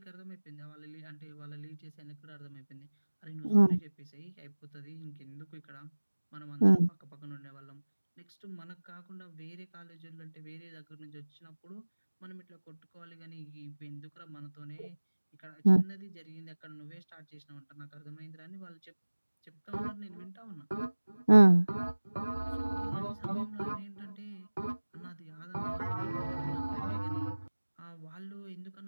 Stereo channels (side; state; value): both; inverted; correlation -1.00